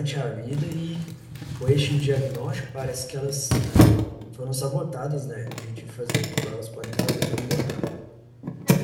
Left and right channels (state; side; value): identical; both; correlation 1.00